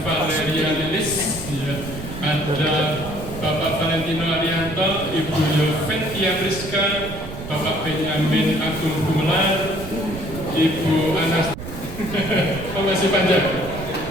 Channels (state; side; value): noise; right; rumble, 11 dB below the sound